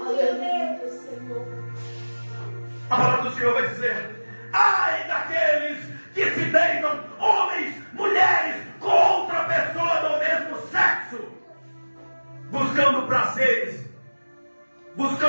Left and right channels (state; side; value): inverted; both; correlation -1.00